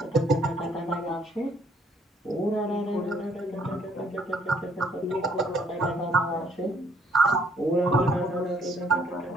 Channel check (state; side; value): normal; both; correlation 0.65